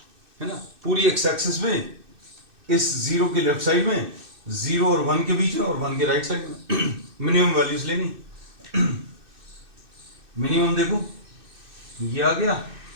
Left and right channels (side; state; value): left; late; 2.6 ms